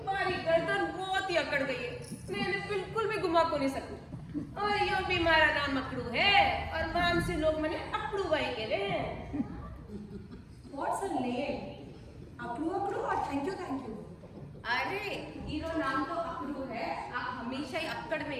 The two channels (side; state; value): both; identical; correlation 1.00